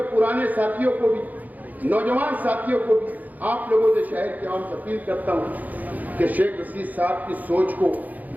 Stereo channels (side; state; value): left; late; 0.080 ms